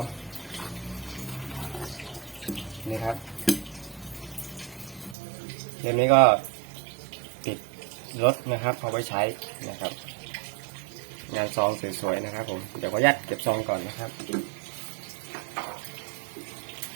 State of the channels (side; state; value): left; drops out; at 5.2 s